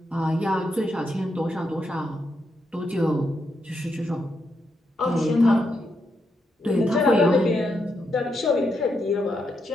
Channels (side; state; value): both; normal; correlation 0.82